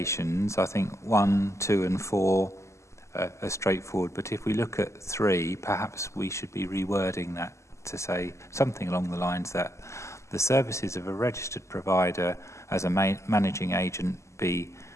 I think 1, 2 and 4 are straightforward, but if we look at 3, perhaps we should be rewording that to say something along the lines that the services of a registered provider as a managing agent be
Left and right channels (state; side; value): late; right; 0.14 ms